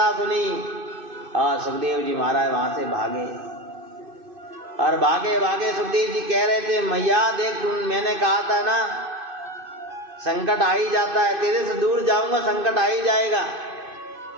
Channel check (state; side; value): late; left; 2.6 ms